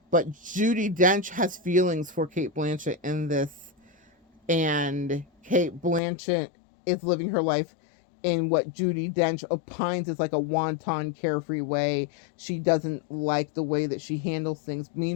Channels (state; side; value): drops out; right; at 6.0 s